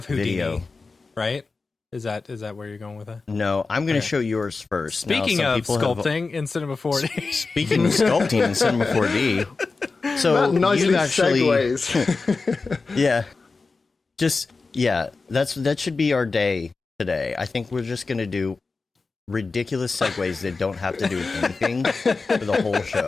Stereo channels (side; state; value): right; quieter; 4.1 dB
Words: Houdini, Video. right? Is that where you're going with it? No, I'm gonna Okay. show yours first. Now, Speaking some of people have- sculpting in Cinema 4D. Speaking of sculpting in Cinema 4D, so That nicely you actually, segues. yeah, that should be our day today. I think we're just gonna do ridiculous segues that don't have to do with anything for the whole